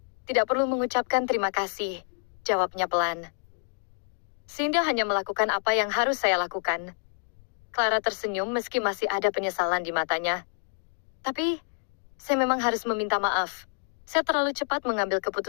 "Tidak perlu mengucapkan terima kasih," jawabnya pelan. "Sinda hanya melakukan apa yang harus saya lakukan." Clara tersenyum meski masih ada penyesalan di matanya. "Tapi, saya memang harus meminta maaf. Saya terlalu cepat mengambil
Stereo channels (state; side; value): silent; right; 59 dB below the other